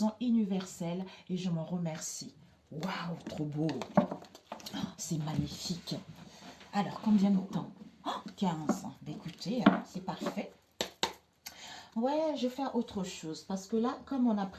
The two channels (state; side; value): identical; both; correlation 1.00